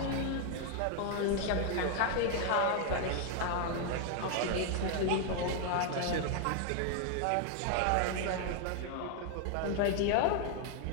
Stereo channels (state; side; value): different; both; correlation 0.00